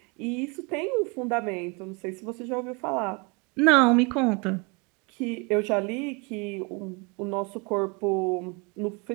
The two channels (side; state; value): left; quieter; 29.1 dB